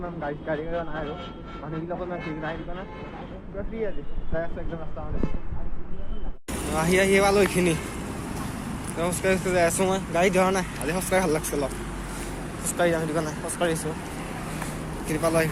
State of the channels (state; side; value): identical; both; correlation 1.00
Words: গাড়ী নাই আৰু মানুহবিলাকৰ ইমান ভিৰ নাই সেইটো কাৰণে পুৰা ফ্ৰী আজি যাই আছোঁ একদম ৰাস্তা মানে আহি পালোঁ এইখিনি খোজকাঢ়ি যাই আছোঁ মই গাড়ী ধৰা নাই আজি খোজকাঢ়ি ভাল লাগছে অলপ খোজকাঢ়ি যাম সেইটো কাৰণে খোজকাঢ়িছোঁ এইখিনি পালোঁ